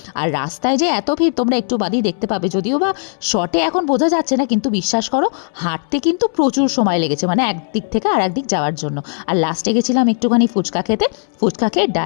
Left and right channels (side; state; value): right; silent; 65 dB below the other